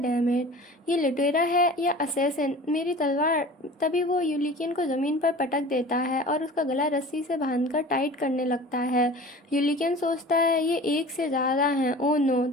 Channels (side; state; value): both; normal; correlation 0.40